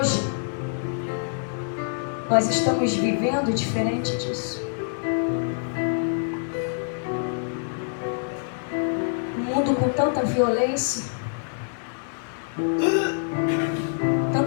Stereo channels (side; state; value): right; silent; digital silence